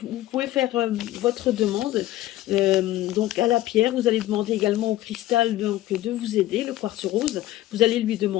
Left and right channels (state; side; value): quieter; right; 15.3 dB